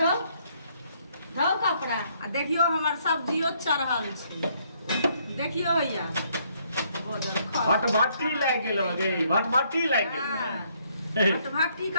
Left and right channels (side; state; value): both; inverted; correlation -0.69